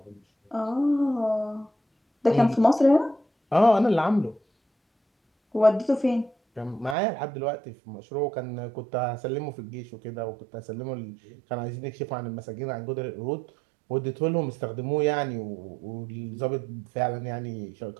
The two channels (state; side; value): drops out; left; at 7.0 s